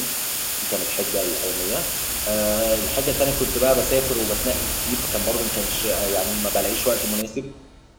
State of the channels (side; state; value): both; identical; correlation 1.00